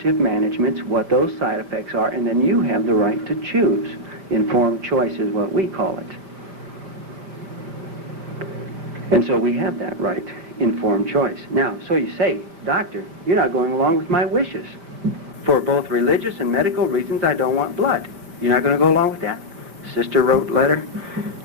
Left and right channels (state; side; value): late; left; 5.1 ms